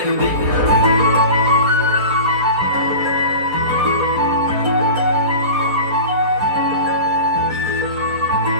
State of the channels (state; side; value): late; left; 3.8 ms